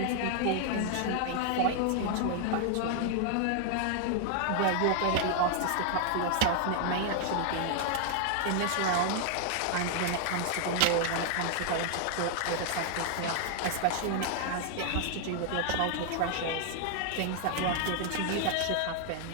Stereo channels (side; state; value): both; different; correlation 0.00